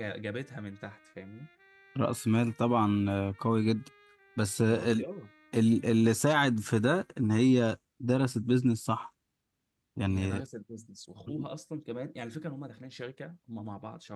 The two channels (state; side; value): identical; both; correlation 1.00